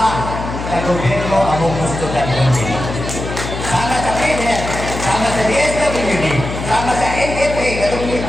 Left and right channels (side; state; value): left; noise; hum, 7 dB below the sound